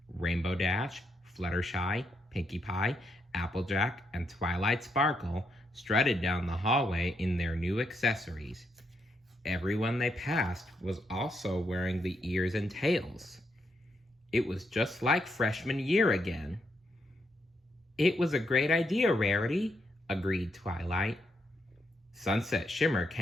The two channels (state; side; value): normal; both; correlation 0.79